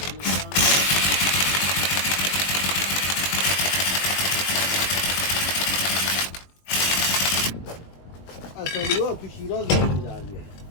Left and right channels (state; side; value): late; right; 21 ms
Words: اصلی‌ها تو شیراز می‌دارن.